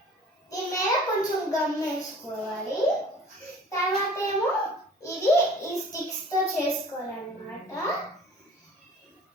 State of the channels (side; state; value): both; normal; correlation 0.48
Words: దీని మీద కొంచెం గమ్ వేసుకోవాలి. తర్వాత ఏమో ఇది ఈ స్టిక్స్తో చేసుకోవాలన్నమాట.